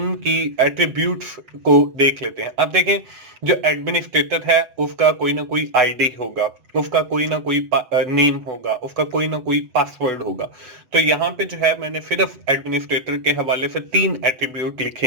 एट्रीब्यूट्स को देख लेते हैं। अब देखें, जो एडमिनिस्ट्रेटर है उसका कोई ना कोई आईडी होगा, उसका कोई ना कोई नेम होगा, उसका कोई ना कोई पासवर्ड होगा। तो यहाँ पे जो है मैंने सिर्फ एडमिनिस्ट्रेटर के हवाले से 3 एट्रीब्यूट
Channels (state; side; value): late; left; 7.9 ms